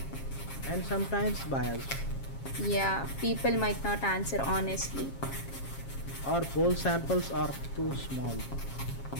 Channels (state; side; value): late; right; 7.3 ms